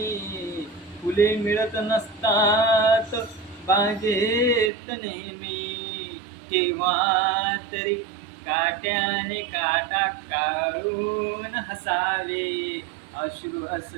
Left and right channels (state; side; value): drops out; left; at 4.7 s